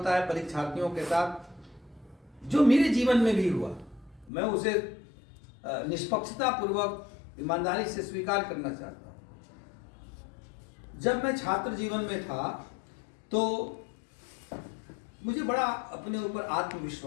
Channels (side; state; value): right; drops out; at 4.3 s